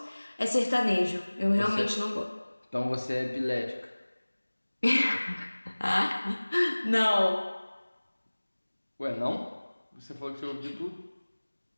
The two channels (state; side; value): inverted; both; correlation -1.00